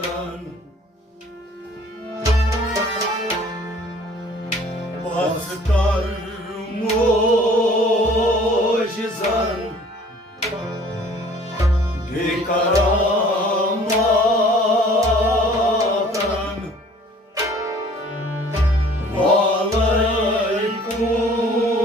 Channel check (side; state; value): both; normal; correlation 0.52